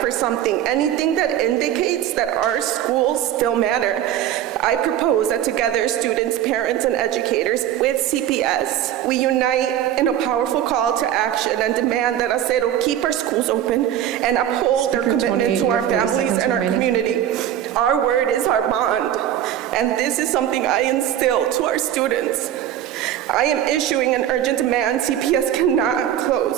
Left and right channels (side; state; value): left; quieter; 11.2 dB